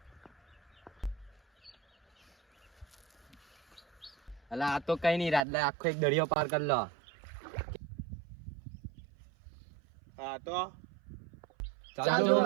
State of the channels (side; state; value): left; drops out; at 5.5 s